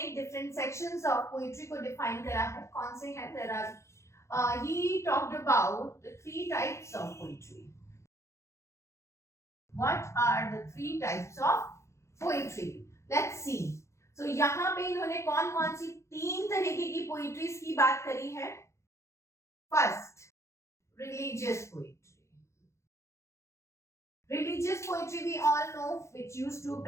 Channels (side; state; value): right; late; 0.14 ms